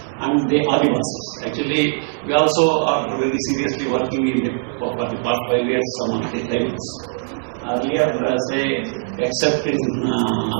and the Adivasis. Actually, we also are very seriously working for the past 5 years on the tribals. Earlier, say, except in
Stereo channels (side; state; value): left; silent; 60 dB below the other